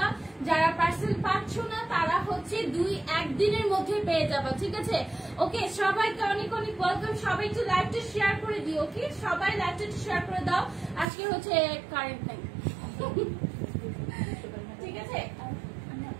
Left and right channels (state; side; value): drops out; left; at 11.1 s